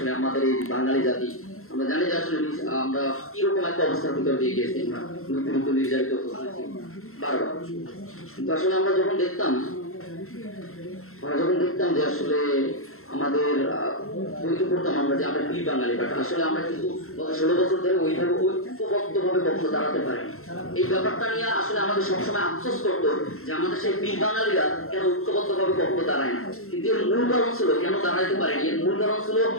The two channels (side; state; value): right; late; 0.62 ms